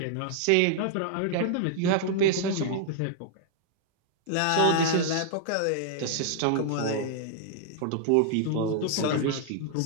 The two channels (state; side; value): different; both; correlation -0.01